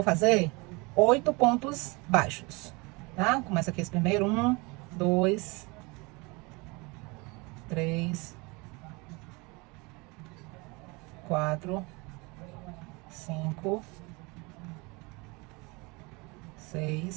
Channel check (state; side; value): quieter; left; 26.8 dB